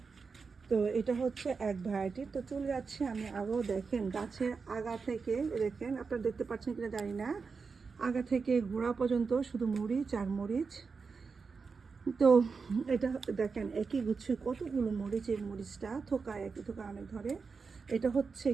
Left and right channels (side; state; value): left; quieter; 5.0 dB